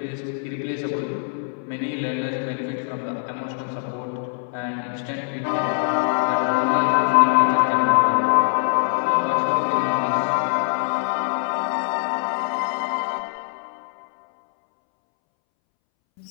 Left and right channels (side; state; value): right; silent; 63 dB below the other